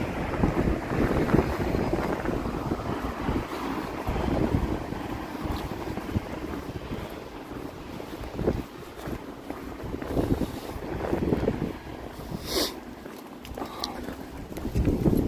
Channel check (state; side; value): identical; both; correlation 1.00